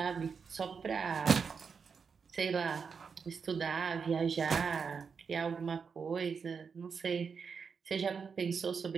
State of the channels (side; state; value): left; quieter; 5.8 dB